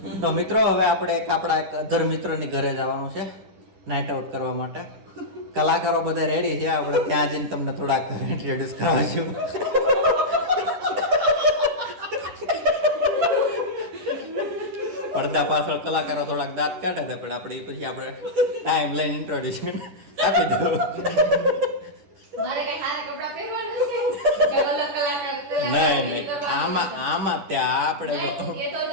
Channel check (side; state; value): left; late; 10 ms